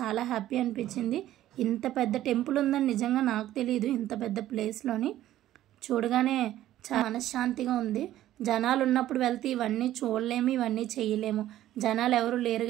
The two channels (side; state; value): left; quieter; 13.5 dB